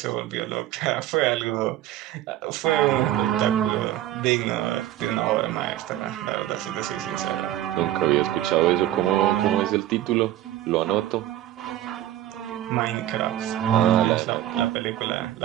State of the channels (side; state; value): left; quieter; 13.2 dB